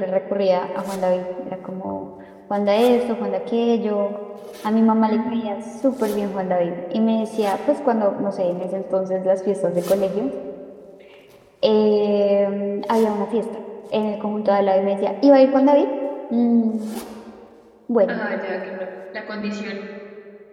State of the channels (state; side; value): identical; both; correlation 1.00